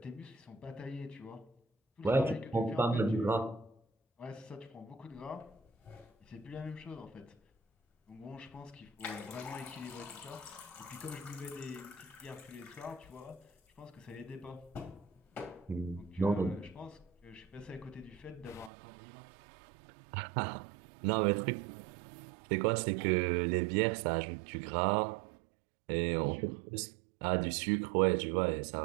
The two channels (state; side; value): drops out; left; at 18.7 s